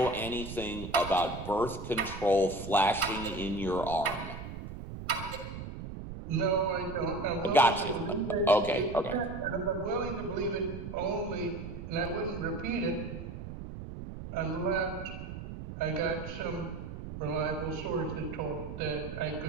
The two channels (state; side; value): noise; right; rumble, 9 dB below the sound